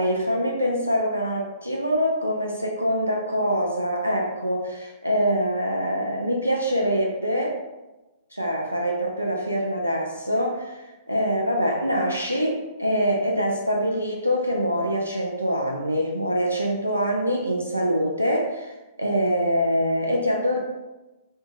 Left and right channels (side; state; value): both; inverted; correlation -0.69